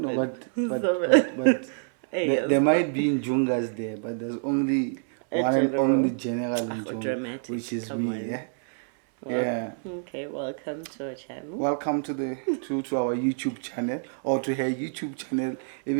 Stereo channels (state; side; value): silent; left; 60 dB below the other